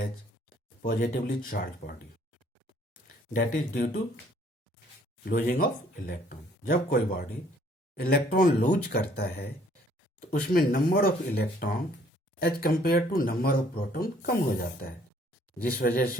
positively charge body. That is due to losing of electron. जब कोई body electron lose करता है तो उसमें number of electron as compare to number of proton कम हो जाता है, जिस वजह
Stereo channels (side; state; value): both; normal; correlation 0.61